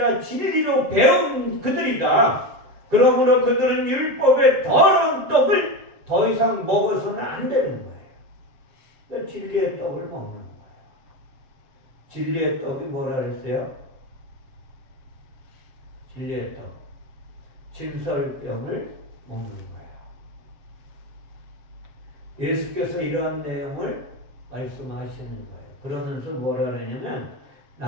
진리로 배운 그들이다. 그러므로 그들은 율법의 더러운 떡을 더 이상 먹어서는 안 되는 거예요. 그러니까 진리의 떡을 먹는 거예요. 진리의 떡이 뭐라 그랬어요? 진리의 떡. 진설병을 먹는 거예요. 예수께서 이러한 내용을 말씀하시는 거예요. 그러면서 뭐라 그러냐면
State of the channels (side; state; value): left; late; 7.5 ms